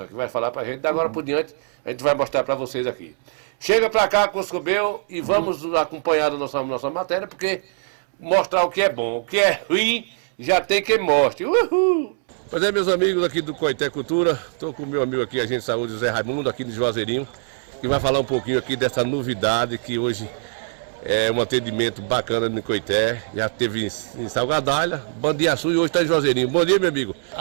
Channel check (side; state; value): left; silent; 64 dB below the other